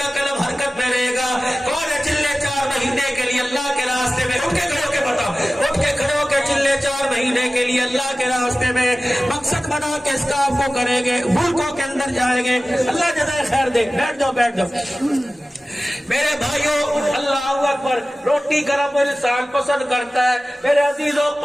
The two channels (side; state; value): both; normal; correlation 0.96